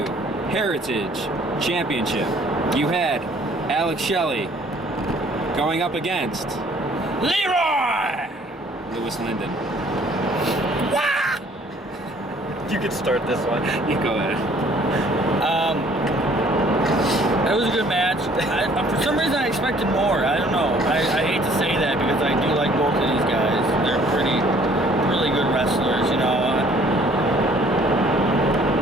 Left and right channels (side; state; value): both; normal; correlation 0.58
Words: Heritage Championship, you had Alex Shelley going up against Leroy! Lewis Linden. You could start this one. You go ahead. It was a good match. For some reason, I expected more. I don't know. I hate to say that because I do like both of these guys. They're really good wrestlers, you know. I